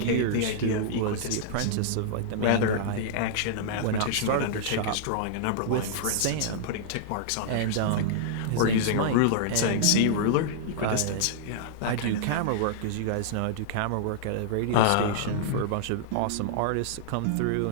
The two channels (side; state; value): both; different; correlation -0.02